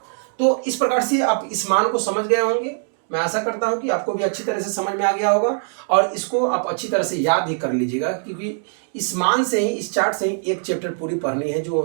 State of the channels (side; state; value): left; silent; digital silence